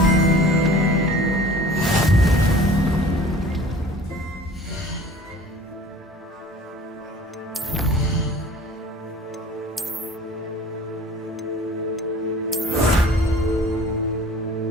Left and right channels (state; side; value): normal; both; correlation 0.45